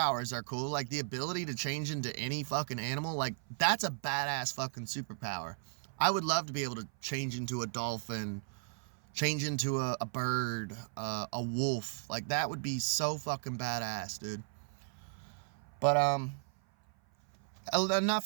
are cool, like the ability to change into any fucking animal. Like, that's a badass fucking superpower. I would love to be able to change into a dolphin, change into a bird, a wolf. Like, that would be so fucking badass, dude. But,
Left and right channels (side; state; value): left; silent; 54 dB below the other